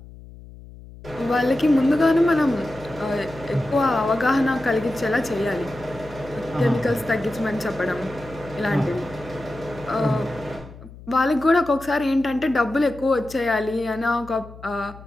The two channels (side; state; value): left; noise; hum, 18 dB below the sound